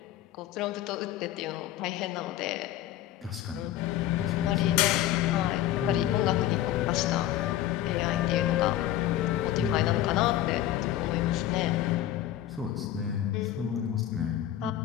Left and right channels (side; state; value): right; quieter; 12.8 dB